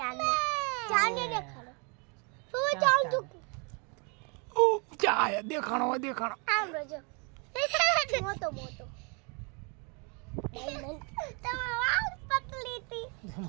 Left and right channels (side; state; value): left; quieter; 33.7 dB